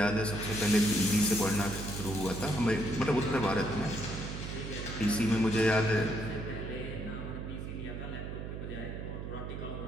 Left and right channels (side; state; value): right; noise; hum, 7 dB below the sound